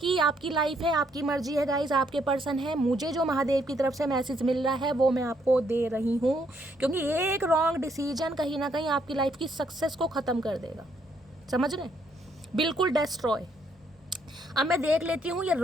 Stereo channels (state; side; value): normal; both; correlation 0.71